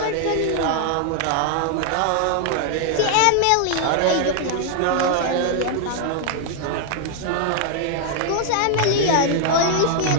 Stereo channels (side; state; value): both; different; correlation 0.00